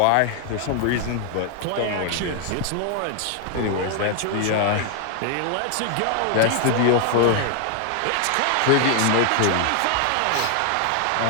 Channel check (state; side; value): different; both; correlation 0.00